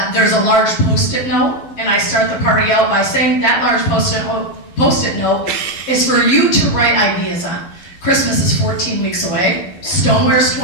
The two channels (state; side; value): late; right; 11 ms